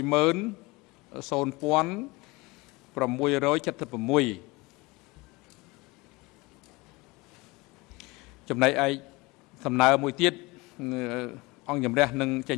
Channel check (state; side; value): quieter; right; 23.6 dB